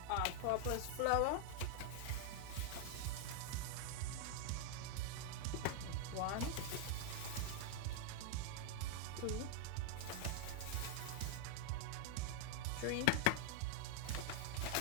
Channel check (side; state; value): both; different; correlation 0.00